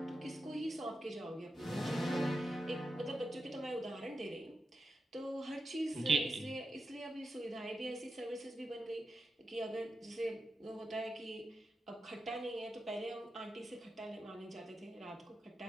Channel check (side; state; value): both; normal; correlation 0.89